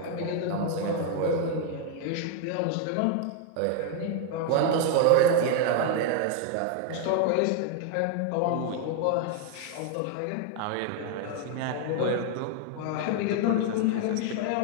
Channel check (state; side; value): different; both; correlation 0.00